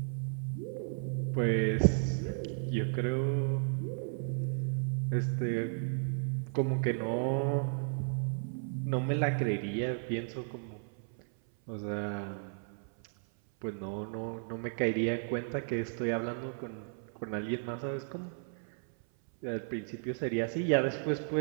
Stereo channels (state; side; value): silent; left; 55 dB below the other